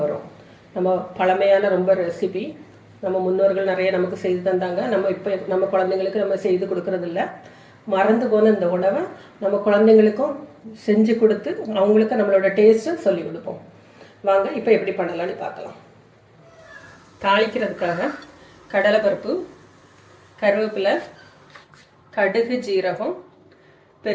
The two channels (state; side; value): identical; both; correlation 1.00